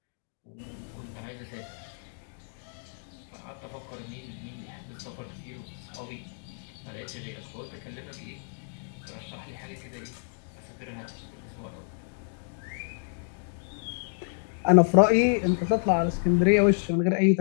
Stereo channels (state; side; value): silent; right; 58 dB below the other